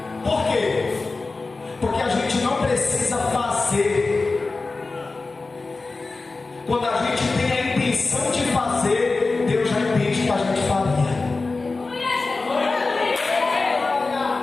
Por quê? Porque a gente não precisa fazer. Quando a gente tem a intenção de fazer, Deus já entende que a gente faria.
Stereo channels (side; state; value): right; quieter; 3.7 dB